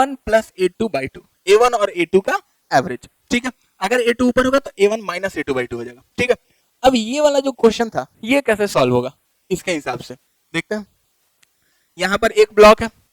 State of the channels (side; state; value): both; identical; correlation 1.00